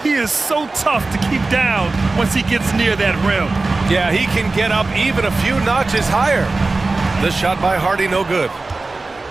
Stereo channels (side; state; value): left; quieter; 3.5 dB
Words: he is so tough to keep down once he gets near that rim. Yeah, he can get up even a few notches higher. This shot by Hardy, no good.